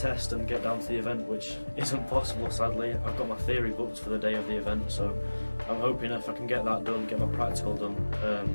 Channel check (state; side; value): inverted; both; correlation -1.00